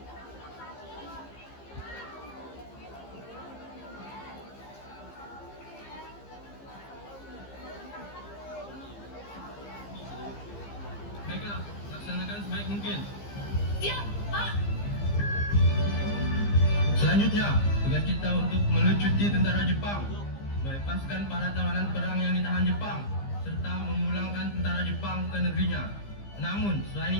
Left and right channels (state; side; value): late; right; 15 ms